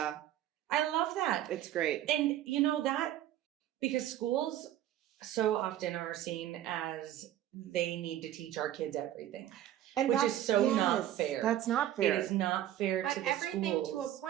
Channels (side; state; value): left; quieter; 12.4 dB